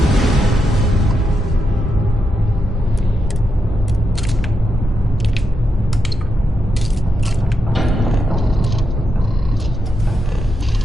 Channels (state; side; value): normal; both; correlation 0.84